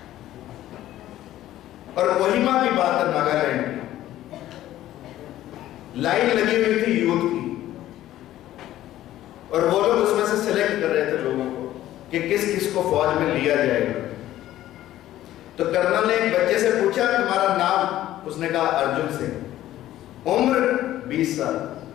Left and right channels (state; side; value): quieter; right; 13.7 dB